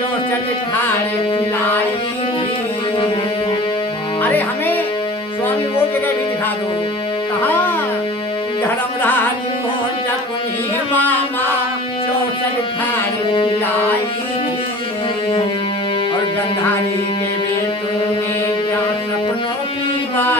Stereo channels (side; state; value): both; normal; correlation 0.42